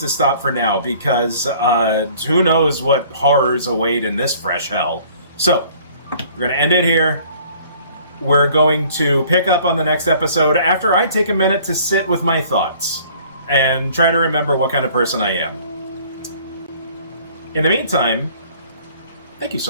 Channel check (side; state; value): both; inverted; correlation -0.54